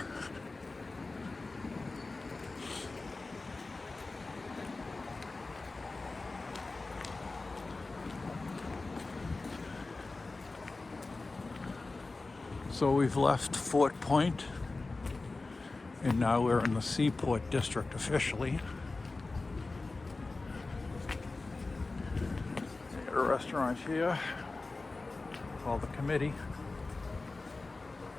So we've left Fort Point, and now we're in the Seaport district officially. Got a restaurant here called the Committee.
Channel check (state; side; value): quieter; right; 3.5 dB